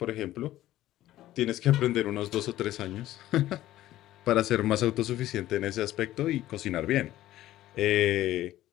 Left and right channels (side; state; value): right; quieter; 14.5 dB